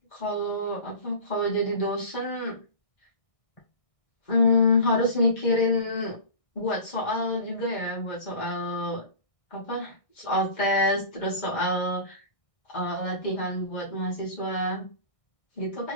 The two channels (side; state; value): right; late; 1.6 ms